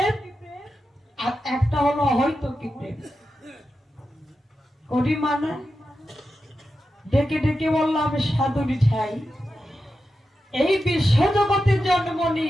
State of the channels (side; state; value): both; normal; correlation 0.90